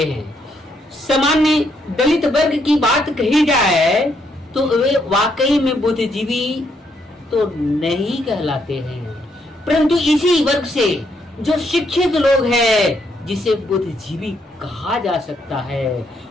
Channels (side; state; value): both; normal; correlation 0.75